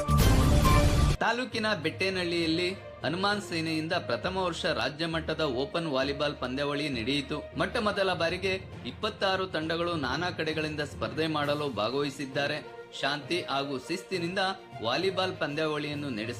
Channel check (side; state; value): both; identical; correlation 1.00